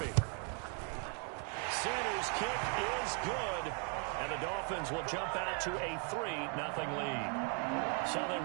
Sanders' kick is good, and the Dolphins will jump out to a 3-0 lead. So they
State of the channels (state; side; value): quieter; left; 39.7 dB